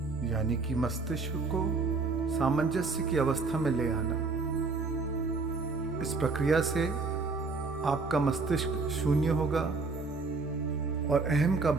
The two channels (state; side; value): quieter; left; 4.0 dB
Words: यानी कि मस्तिष्क को सामंजस्य की अवस्था में ले आना। इस प्रक्रिया से आपका मस्तिष्क शून्य होगा और अहम का